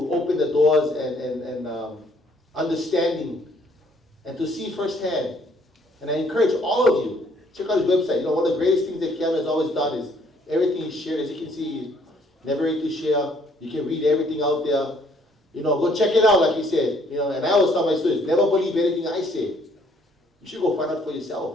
open the doors and understanding and to see firsthand. And I encourage all of you, check out his website. One of the greatest things that Keanu has always done is everything he's shared. As you can see, he's never ready to share. You can read everything out there. Go check it out, like he said. And I always tell my students, never believe anything I say. You should go find out for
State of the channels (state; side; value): normal; both; correlation 0.64